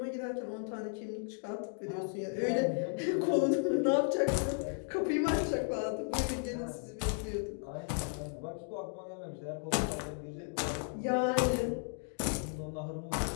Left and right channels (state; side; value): silent; right; 55 dB below the other